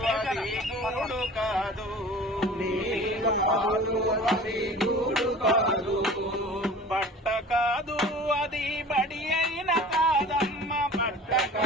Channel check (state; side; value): normal; both; correlation 0.42